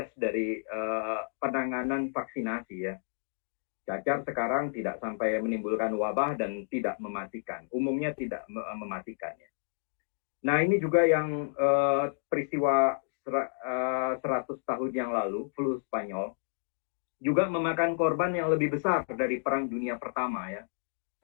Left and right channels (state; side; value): silent; right; digital silence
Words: dari penanganan vaksinasi ya. Cacar sekarang tidak sampai menimbulkan wabah dan tidak mematikan. Umumnya tidak mematikan ya. Nah ini juga yang peristiwa 100 tahun yang lalu, flu Spanyol, juga memakan korban yang lebih besar dari Perang Dunia Pertama ya,